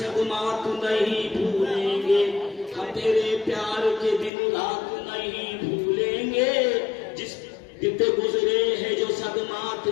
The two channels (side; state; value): right; drops out; at 4.3 s